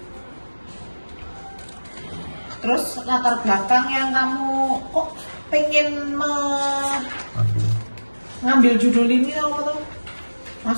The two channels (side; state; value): both; inverted; correlation -1.00